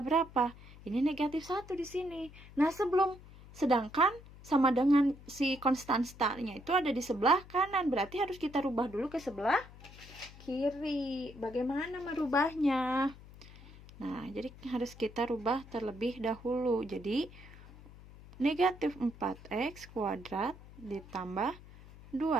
Ini negatif 1 di sini. Nah, sedangkan sama dengan si konstan startnya itu ada di sebelah kanan. Berarti harus kita rubah dulu ke sebelah kiri. Bagaimana merubahnya? Nah, jadi harus kita rubah terlebih dahulu. Jadi, negatif 4X kuadrat ditambah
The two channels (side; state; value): left; noise; hum, 19 dB below the sound